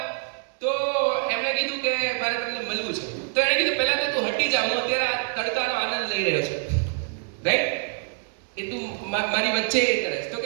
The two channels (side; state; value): left; silent; 58 dB below the other